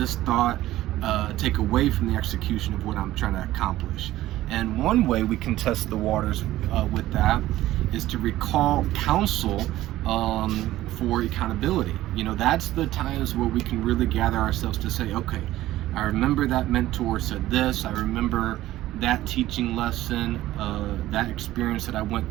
thought take away from the execution of what I'm trying to accomplish? And one way we can test the waters with that is to recall counsel for accountability. That's the times where we can really gather ourselves to say, okay, I remember that mentor said this, I remember that teaching lesson, that experience that I went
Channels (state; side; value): quieter; left; 15.3 dB